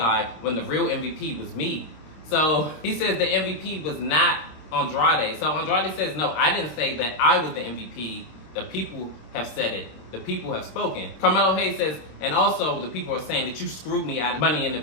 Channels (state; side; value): late; right; 26 ms